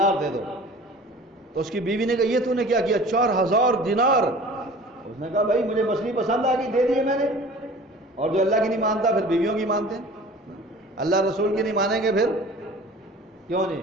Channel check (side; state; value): both; normal; correlation 0.44